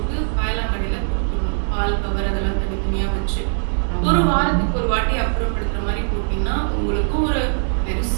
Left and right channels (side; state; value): left; silent; digital silence